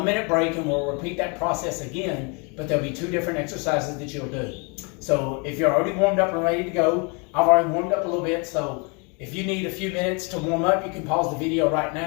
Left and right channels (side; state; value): right; quieter; 33.0 dB